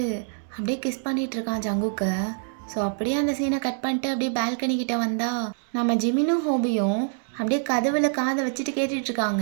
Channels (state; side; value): silent; left; 61 dB below the other